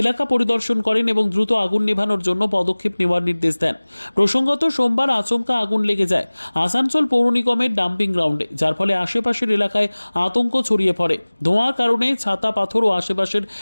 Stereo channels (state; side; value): inverted; both; correlation -1.00